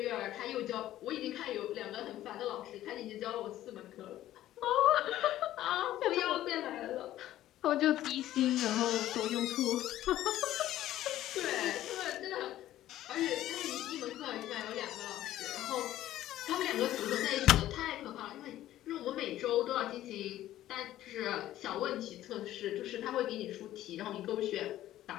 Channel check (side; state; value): right; quieter; 13.7 dB